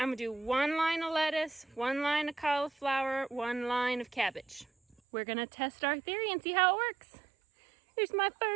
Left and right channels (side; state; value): left; drops out; at 5.0 s